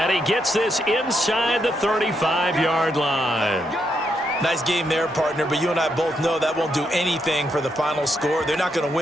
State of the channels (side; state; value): both; normal; correlation 0.79